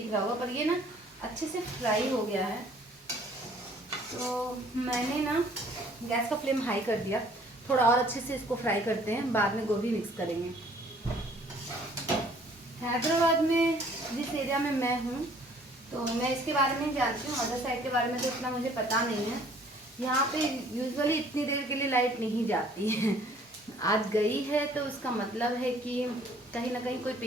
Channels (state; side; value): normal; both; correlation 0.57